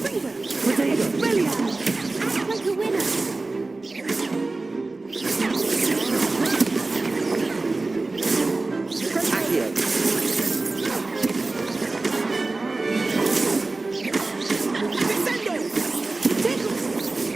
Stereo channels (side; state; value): left; quieter; 3.3 dB